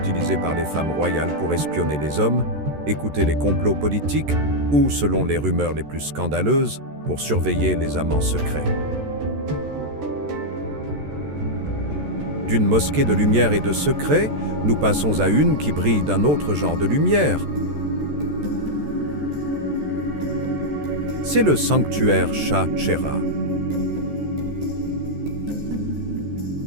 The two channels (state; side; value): late; left; 14 ms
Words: par les femmes royales pour espionner les hommes, écouter les complots politiques ou, selon les rumeurs les plus scandaleuses, pour surveiller les amants secrets. D'une mosquée de lumière et de secret, nous passons à une qui brille d'un autre genre de lumière. C'est le sanctuaire Shah Cheragh.